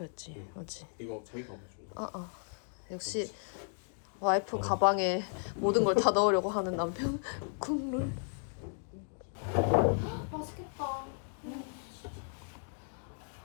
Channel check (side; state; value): right; silent; 55 dB below the other